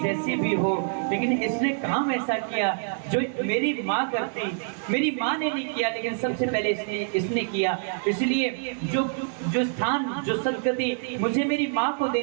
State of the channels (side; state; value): left; silent; digital silence